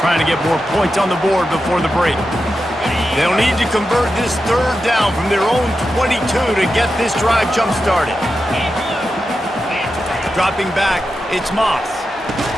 to get more points on the board before the break. They'll need to convert this third down from their own 22 to get this drive jump-started. Dropping back, it's Moss.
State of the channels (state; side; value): normal; both; correlation 0.90